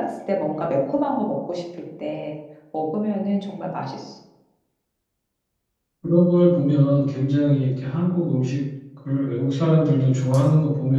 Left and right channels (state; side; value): identical; both; correlation 1.00